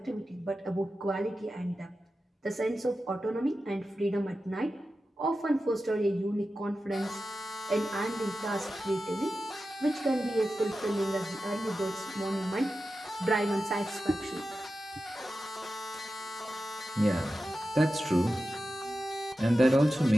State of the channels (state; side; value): normal; both; correlation 0.92